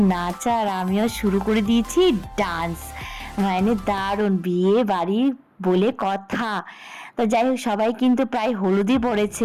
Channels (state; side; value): identical; both; correlation 1.00